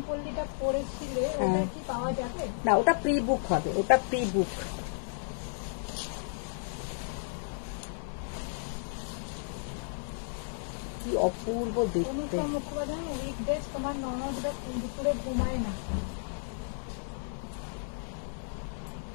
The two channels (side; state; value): right; silent; 56 dB below the other